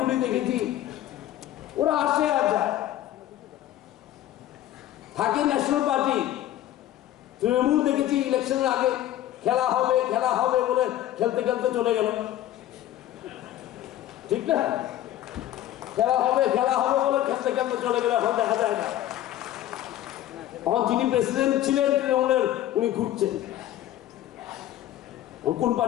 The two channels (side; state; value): right; quieter; 13.1 dB